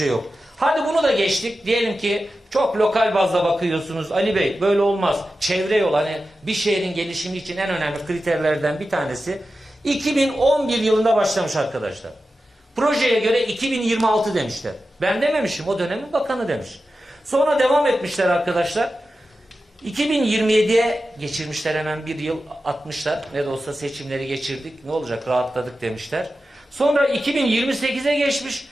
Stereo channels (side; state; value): both; normal; correlation 0.92